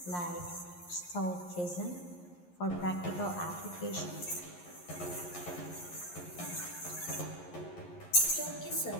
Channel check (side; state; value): right; late; 11 ms